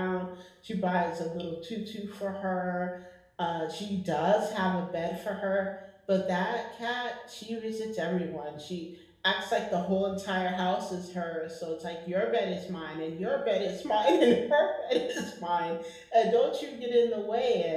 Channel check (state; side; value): identical; both; correlation 1.00